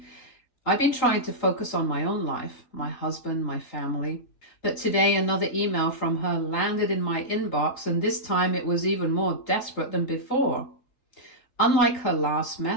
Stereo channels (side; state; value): right; late; 3.8 ms